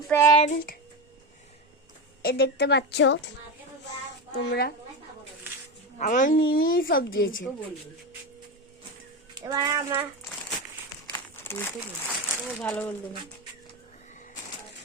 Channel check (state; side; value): normal; both; correlation 0.18